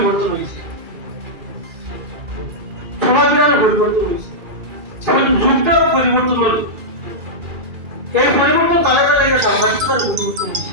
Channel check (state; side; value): late; left; 2.5 ms